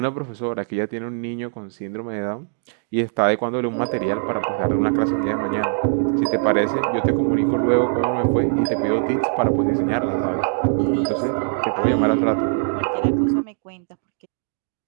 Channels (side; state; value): left; silent; digital silence